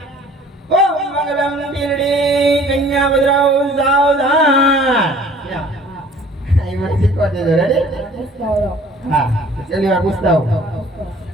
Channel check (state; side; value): normal; both; correlation 0.52